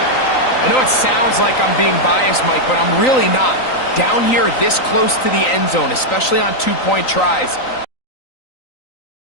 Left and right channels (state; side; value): late; right; 3.9 ms